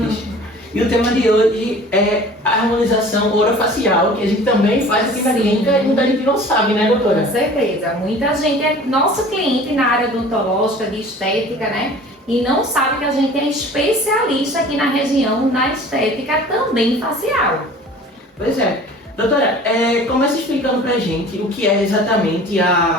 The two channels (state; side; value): normal; both; correlation 0.45